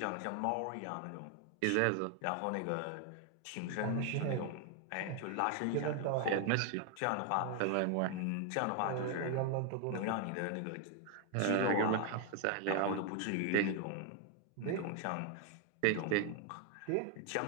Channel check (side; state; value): both; different; correlation 0.00